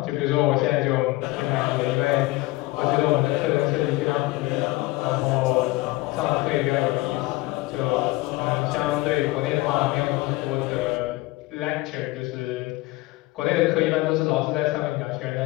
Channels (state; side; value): quieter; right; 20.2 dB